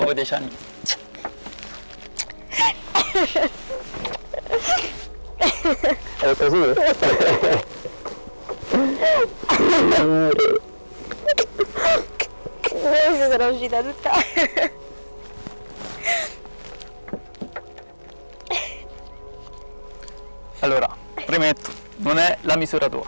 10 anni. È così? Adesso sono uscita tutta. Allora, premetto, non è la misura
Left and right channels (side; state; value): both; inverted; correlation -1.00